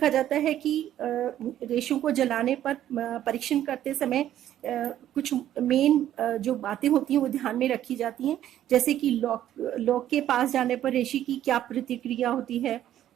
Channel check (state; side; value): quieter; left; 11.8 dB